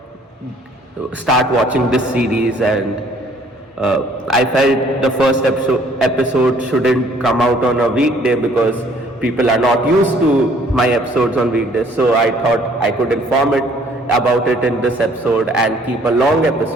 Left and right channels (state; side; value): normal; both; correlation 0.60